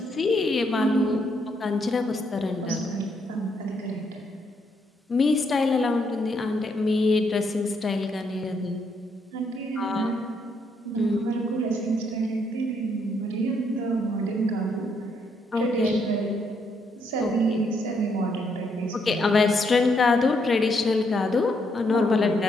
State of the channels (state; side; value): normal; both; correlation 0.74